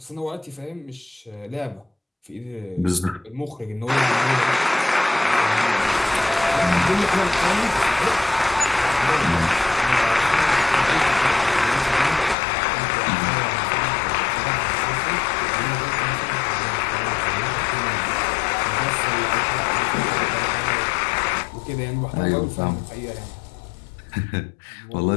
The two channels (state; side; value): drops out; right; at 12.4 s